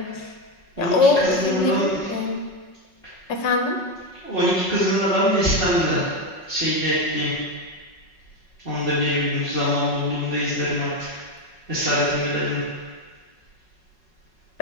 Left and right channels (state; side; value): late; right; 5.4 ms